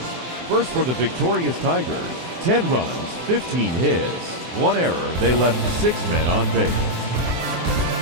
First for the victorious Tigers, 10 runs, 15 hits, 1 error. They left 6 men on base.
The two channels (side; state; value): left; late; 24 ms